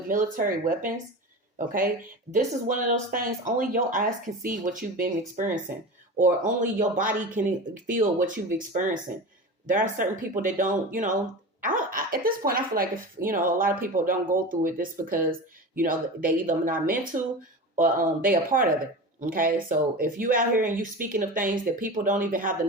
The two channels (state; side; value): normal; both; correlation 0.29